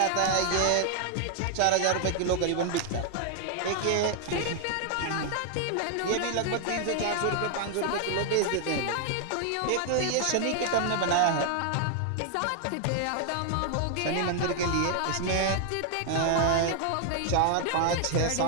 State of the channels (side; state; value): both; different; correlation 0.00